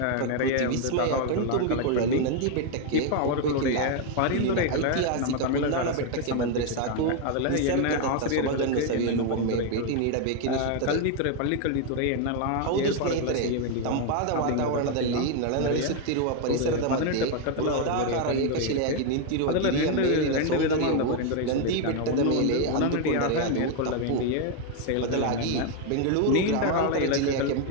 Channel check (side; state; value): both; different; correlation 0.01